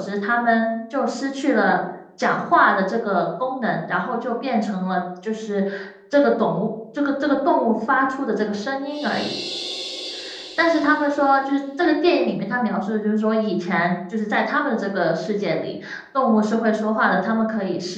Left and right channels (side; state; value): both; identical; correlation 1.00